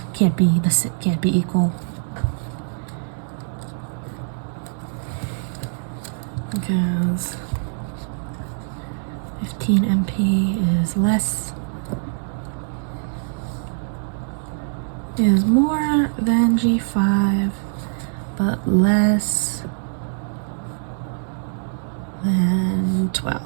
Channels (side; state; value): left; silent; 57 dB below the other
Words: can't be equal. Because 15 MP is more than G5, but less than 12.